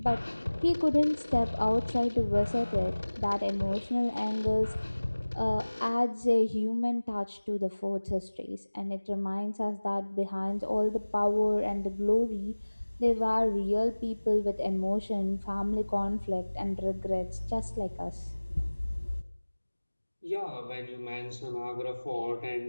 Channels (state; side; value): inverted; both; correlation -1.00